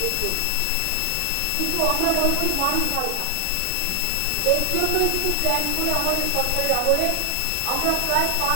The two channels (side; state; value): both; different; correlation 0.00